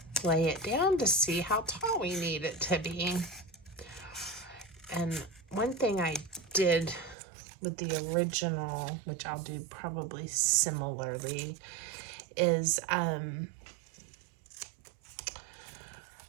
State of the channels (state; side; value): drops out; left; at 7.2 s